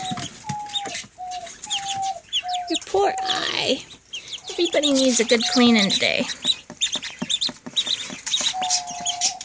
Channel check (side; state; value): both; identical; correlation 1.00